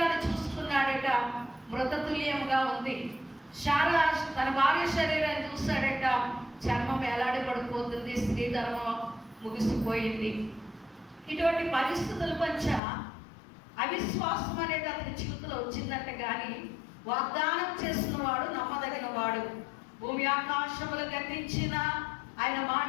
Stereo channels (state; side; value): drops out; right; at 12.8 s